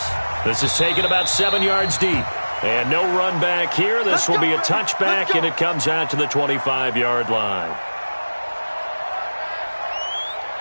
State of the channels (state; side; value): inverted; both; correlation -1.00